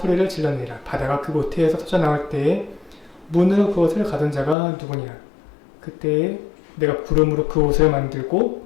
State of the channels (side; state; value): right; drops out; at 4.5 s